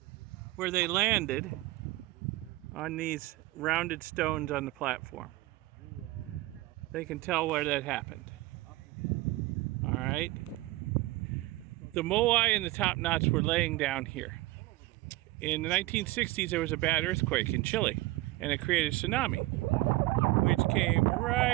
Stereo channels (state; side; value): quieter; left; 18.7 dB